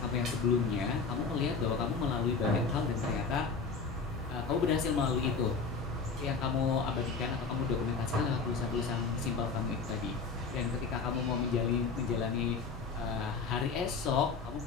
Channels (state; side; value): quieter; right; 4.8 dB